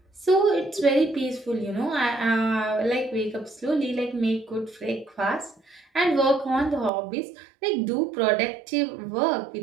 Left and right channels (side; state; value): left; drops out; at 6.9 s